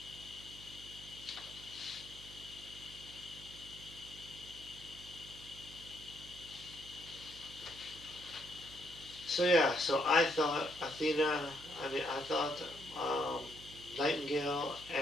So I thought I thought um, Nightingale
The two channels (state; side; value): noise; right; hum, 17 dB below the sound